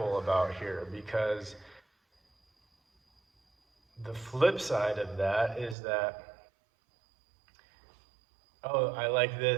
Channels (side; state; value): left; drops out; at 5.8 s